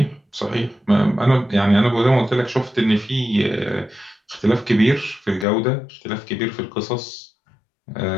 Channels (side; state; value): right; drops out; at 5.5 s